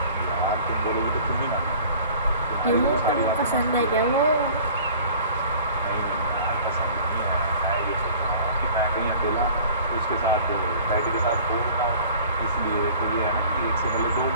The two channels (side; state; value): both; inverted; correlation -0.47